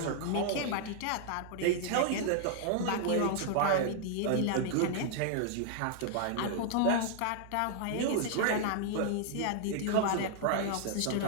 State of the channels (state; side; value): different; both; correlation -0.01